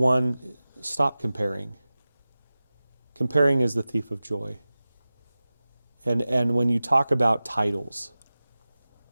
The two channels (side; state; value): both; inverted; correlation -0.96